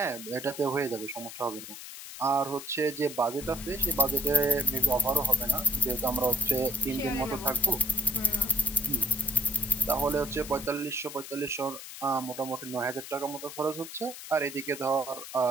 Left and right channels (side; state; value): left; noise; hiss, 12 dB below the sound